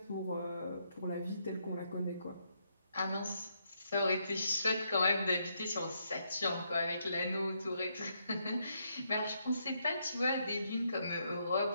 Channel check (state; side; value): inverted; both; correlation -0.77